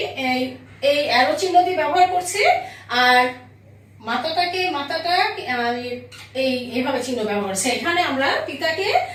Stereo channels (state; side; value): identical; both; correlation 1.00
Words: এই অ্যারো চিহ্ন দিয়ে ব্যবহার করছি, আর মাতাটা আমি এইভাবে চিহ্ন ব্যবহার করছি। এখানে আমরা পিতাকে